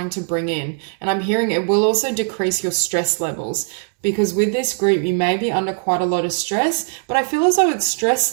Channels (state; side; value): silent; left; 66 dB below the other